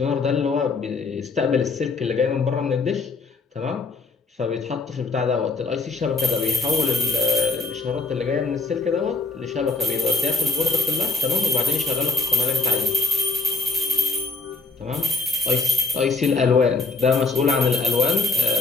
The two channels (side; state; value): right; quieter; 3.5 dB